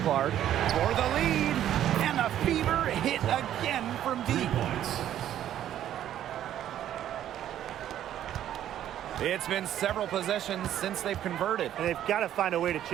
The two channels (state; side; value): quieter; left; 11.4 dB